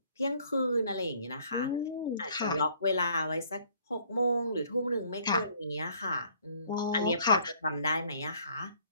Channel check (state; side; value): inverted; both; correlation -0.60